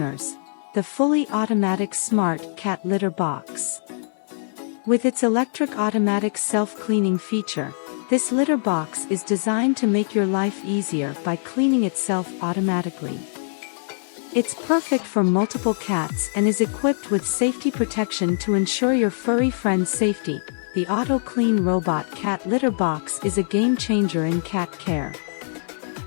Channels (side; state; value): right; silent; digital silence